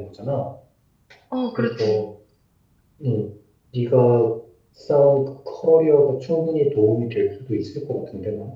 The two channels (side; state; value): both; identical; correlation 1.00